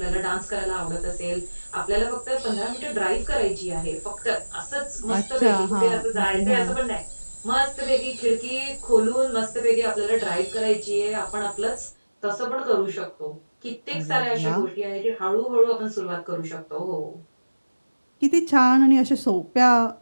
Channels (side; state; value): both; inverted; correlation -1.00